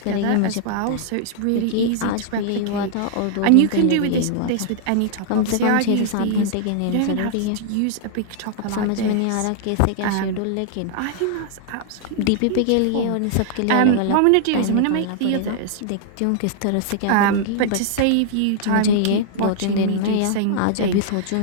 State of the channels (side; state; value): both; different; correlation -0.01